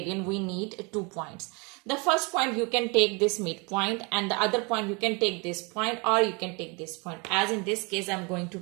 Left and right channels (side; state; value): left; quieter; 30.3 dB